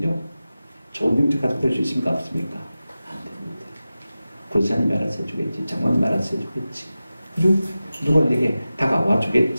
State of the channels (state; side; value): inverted; both; correlation -0.95